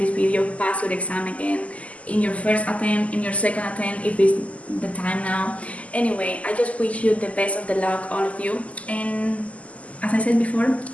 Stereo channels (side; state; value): right; late; 0.068 ms